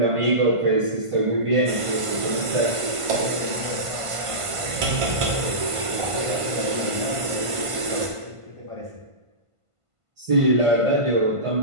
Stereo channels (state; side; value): late; left; 1.5 ms